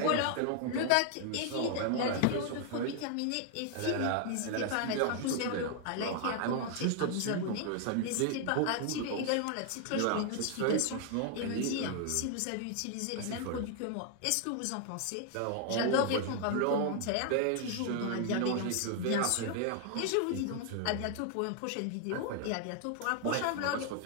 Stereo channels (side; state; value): both; different; correlation 0.00